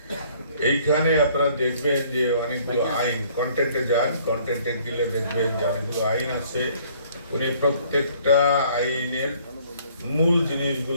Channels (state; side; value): inverted; both; correlation -0.59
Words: এইখানে আপনারা দেখবেন যে অনেকগুলো আইন, কন্টেন্টে যান, কন্টেন্টে গেলে দেখবেন যে অনেকগুলো আইন আছে। উনি প্রত্যেকটা আইনের মূল